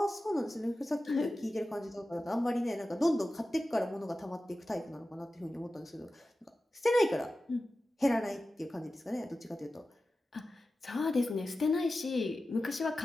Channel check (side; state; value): both; normal; correlation 0.94